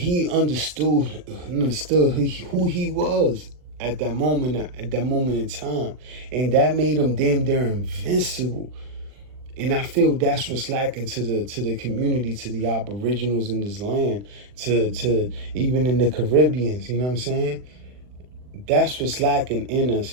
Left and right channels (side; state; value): left; late; 40 ms